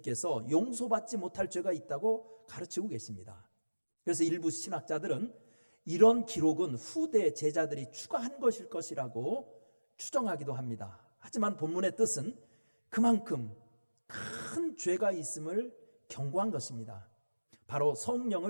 용서받지 못할 죄가 있다고 가르치고 계십니다. 그래서 일부 신학자들은 이런 기록은 후대 제자들이 추가한 것일 것이라고 추정하기도 합니다. 하지만 본문의 뜻은 그만큼 큰 죄가 있음을 경고한 것입니다. 바로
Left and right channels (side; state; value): both; inverted; correlation -1.00